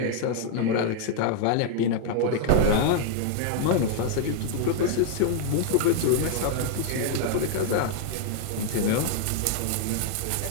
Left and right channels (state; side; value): different; both; correlation 0.00